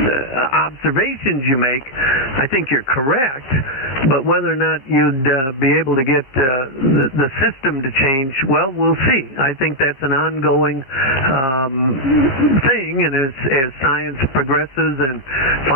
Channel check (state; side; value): late; right; 15 ms